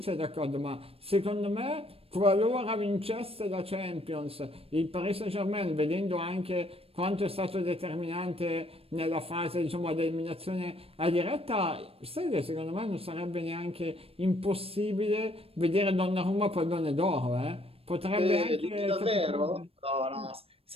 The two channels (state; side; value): late; left; 0.28 ms